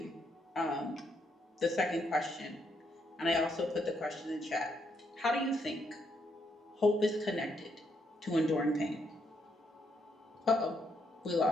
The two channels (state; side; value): normal; both; correlation 0.76